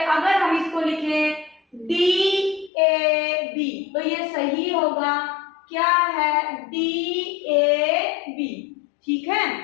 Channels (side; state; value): right; drops out; at 2.7 s